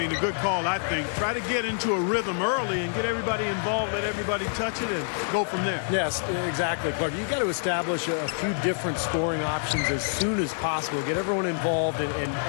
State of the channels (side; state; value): right; silent; digital silence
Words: a good call, I think. Try to get into a rhythm early and get everybody involved, let everybody touch it, and go from there. Yes, exactly, Clark. You've got to establish a few different scoring options as soon as possible. Get everyone involved and